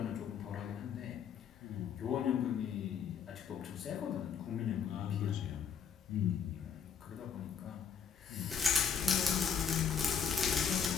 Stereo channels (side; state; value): right; quieter; 7.1 dB